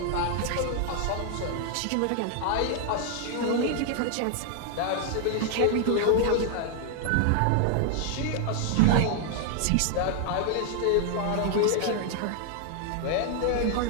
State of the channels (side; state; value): both; different; correlation 0.00